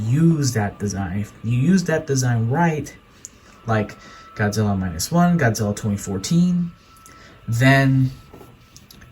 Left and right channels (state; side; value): identical; both; correlation 1.00